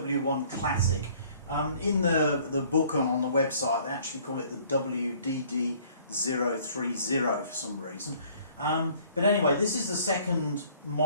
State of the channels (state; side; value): inverted; both; correlation -0.57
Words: Classic. In the book and on the website they actually call it the WDD030 for some reason. But anyway, this is the second